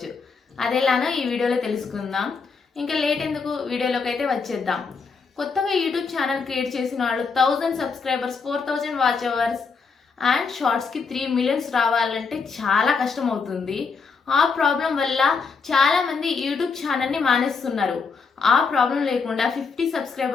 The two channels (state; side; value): quieter; right; 5.0 dB